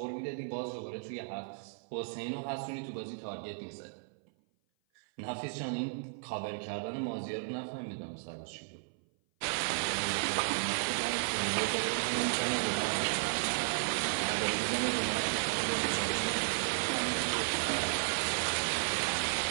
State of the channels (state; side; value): silent; left; 55 dB below the other